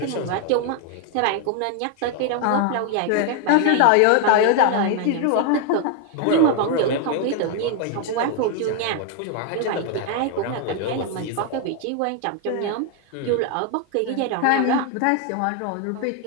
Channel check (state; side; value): different; both; correlation 0.01